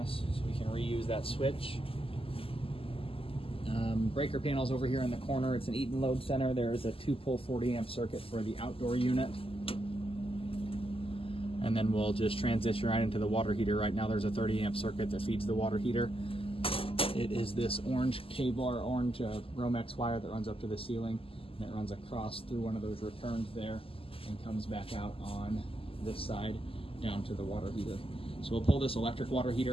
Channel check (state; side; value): late; right; 0.26 ms